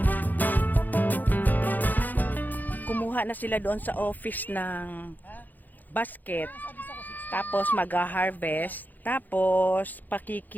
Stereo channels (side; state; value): right; late; 0.085 ms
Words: Kumuha na sila doon sa office ng basket. Tapos mag-harvest. Tapos